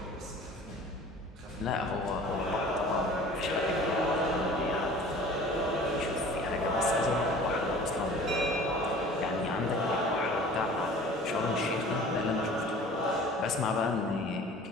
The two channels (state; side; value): normal; both; correlation 0.45